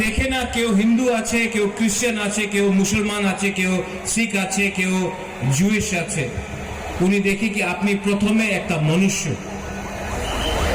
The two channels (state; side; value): identical; both; correlation 1.00